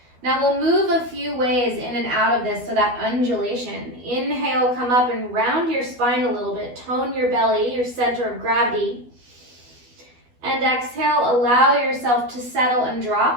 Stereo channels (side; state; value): left; late; 12 ms